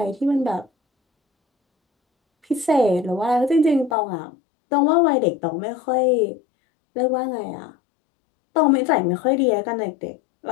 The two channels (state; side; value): drops out; right; at 4.0 s